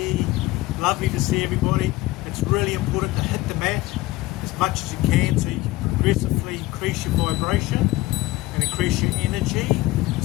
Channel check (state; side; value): quieter; right; 18.9 dB